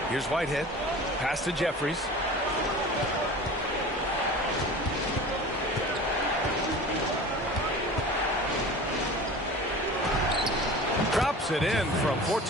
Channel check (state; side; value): normal; both; correlation 0.37